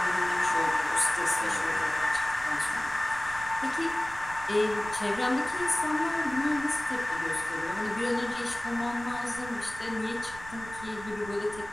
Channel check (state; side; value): noise; right; rumble, 16 dB below the sound